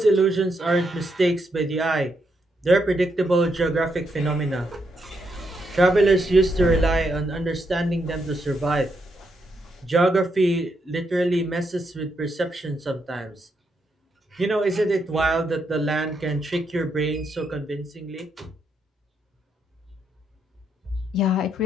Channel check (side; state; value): both; normal; correlation 0.79